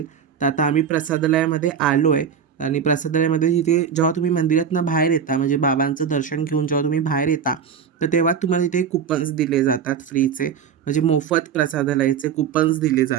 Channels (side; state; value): left; quieter; 7.4 dB